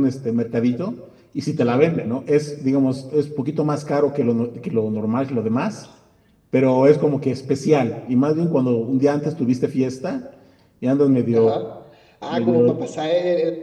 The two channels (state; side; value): identical; both; correlation 1.00